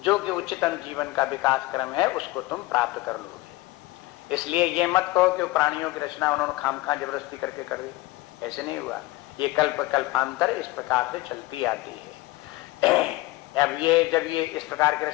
कि उच्चतम जीवन का विकास क्रम है उसको तुम प्राप्त कर लोगे। इसलिए ये मत कहो कि प्राणियों की रचना उन्होंने खामखा जबरदस्ती करके कर दी, ऐसे नहीं हुआ। ये कल्प कल्पांतर इस प्रकार से चलती आती है। अब ये जब ये इस प्रकार की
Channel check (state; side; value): quieter; right; 19.6 dB